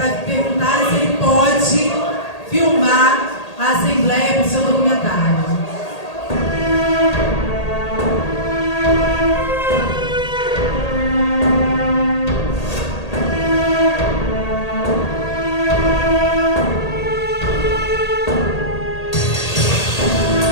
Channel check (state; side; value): late; right; 1.8 ms